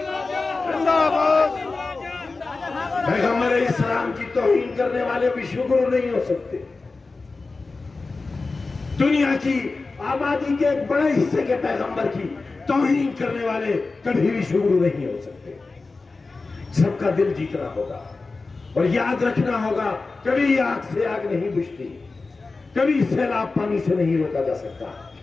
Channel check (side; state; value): right; quieter; 3.8 dB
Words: पैगंबर इस्लाम की तौहीन करने वाले विश्वगुरु नहीं हो सकते। दुनिया की आबादी के एक बड़े हिस्से के पैगंबर की तौहीन करने वाले कभी विश्वगुरु नहीं हो सकते। सबका दिल जीतना होगा और याद रखना होगा, कभी आग से आग नहीं बुझती, कभी सैलाब पानी से नहीं रोका जा सकता,